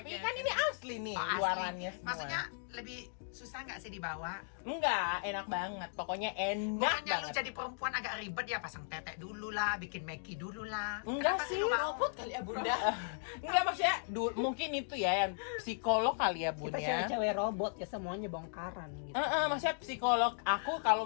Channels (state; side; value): silent; right; digital silence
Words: Oke. kan ini asli nih oh, asli. luarannya semua. Maksudnya lebih susah nggak sih dibawa? Enggak, enak banget, pokoknya enak Bukannya lu banget. jadi perempuan agak ribet ya, pasang tetek dulu lah, bikin meki dulu lah. Enggak Kenapa sih, lu mau? Robot kali ya Bunda. Enggak maksudnya, mungkin itu ya yang psikolog kali ya Bun Kita ya. cewek-cewek robot ya, semuanya bongkaran gitu. Maksudnya psikolog aku kalau